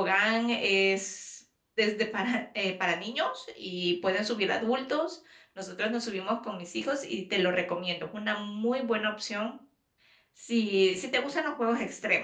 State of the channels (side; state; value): both; identical; correlation 1.00